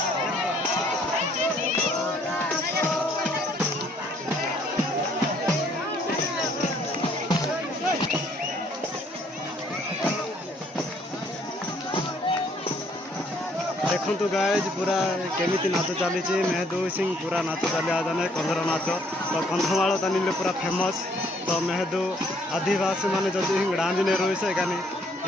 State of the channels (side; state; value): both; normal; correlation 0.64